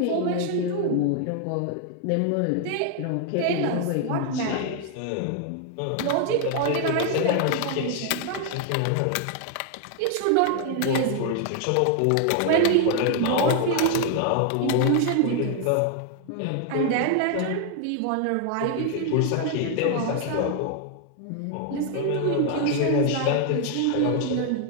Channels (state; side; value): different; both; correlation 0.00